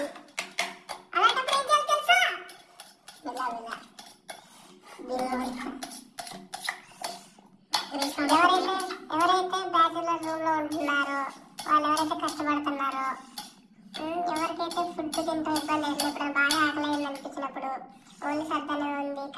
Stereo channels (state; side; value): identical; both; correlation 1.00